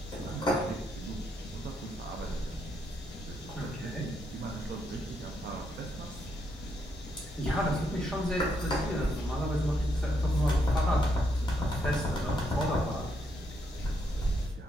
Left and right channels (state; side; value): normal; both; correlation 0.77